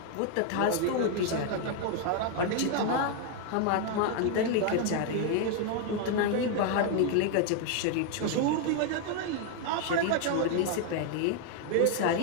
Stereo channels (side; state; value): both; different; correlation 0.00